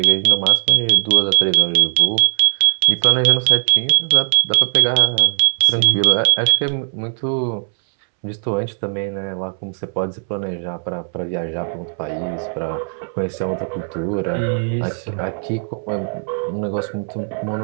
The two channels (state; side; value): silent; left; 67 dB below the other